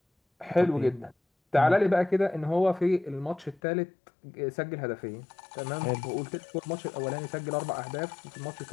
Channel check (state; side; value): drops out; right; at 3.6 s